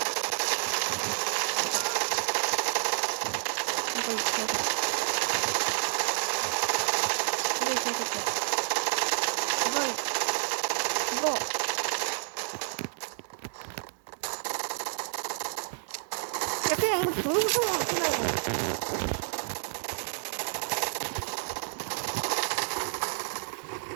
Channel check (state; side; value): silent; left; 58 dB below the other